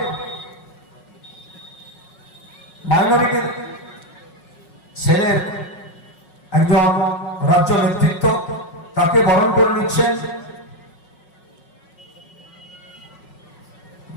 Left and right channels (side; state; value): right; late; 5.4 ms